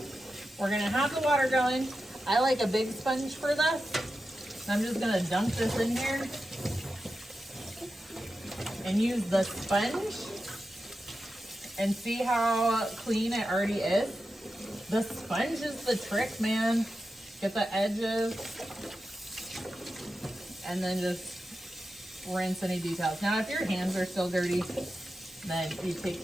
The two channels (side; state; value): both; normal; correlation 0.91